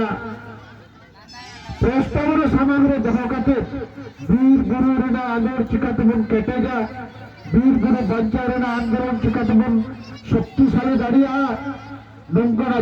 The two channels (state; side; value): identical; both; correlation 1.00